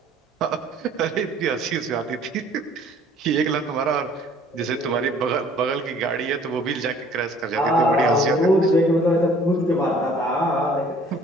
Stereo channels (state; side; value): normal; both; correlation 0.55